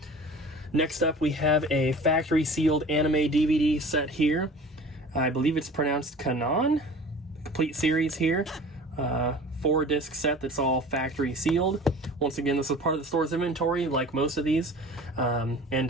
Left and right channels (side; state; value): both; normal; correlation 0.42